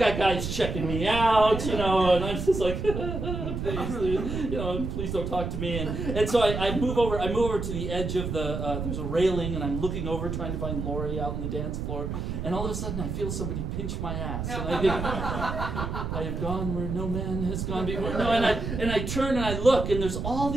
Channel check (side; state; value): right; noise; rumble, 4 dB below the sound